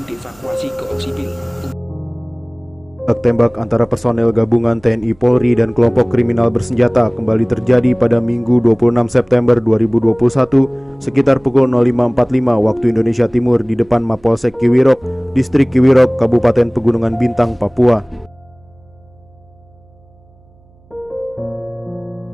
dievakuasi ke Oksibil. Tembak antara personel gabungan TNI Polri dan kelompok kriminal bersenjata kembali terjadi pada Minggu 26 September 2021 sekitar pukul 05.45 waktu Indonesia Timur di depan Mapolsek Kiwirok, Distrik Kiwirok, Kabupaten Pegunungan Bintang, Papua.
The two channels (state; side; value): noise; right; hum, 30 dB below the sound